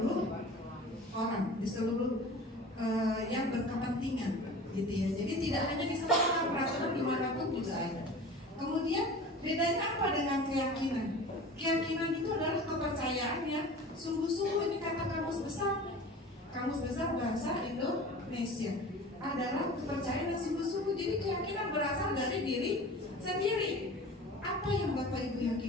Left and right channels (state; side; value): normal; both; correlation 0.38